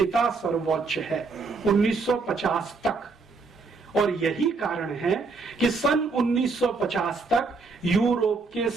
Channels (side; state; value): left; quieter; 4.2 dB